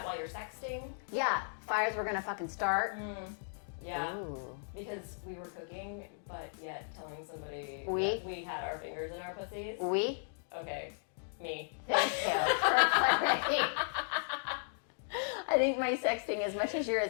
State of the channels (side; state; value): right; silent; digital silence